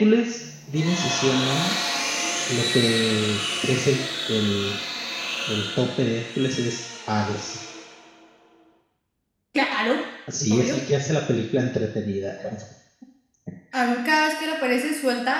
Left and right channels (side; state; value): both; identical; correlation 1.00